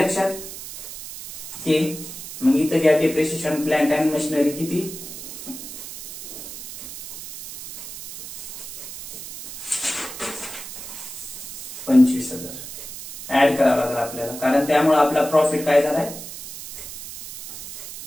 हे मग इथं घ्या डिप्रिशिएशन प्लांट अँड मशिनरी. किती? 25,000 ऍड करावं लागेल आपल्याला, कारण त्यामुळे आपला प्रॉफिट काय झालाय?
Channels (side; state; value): right; noise; hiss, 11 dB below the sound